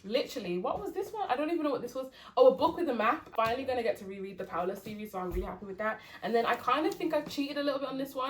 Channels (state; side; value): identical; both; correlation 1.00